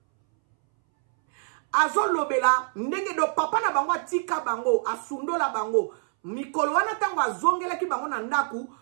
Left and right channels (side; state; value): left; silent; 61 dB below the other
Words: azolo bela ndenge do papa na bango atika bango asundola bango mikolo wana tango azongela ki bango na ndaku